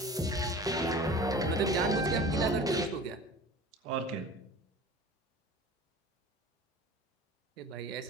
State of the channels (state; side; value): normal; both; correlation 0.40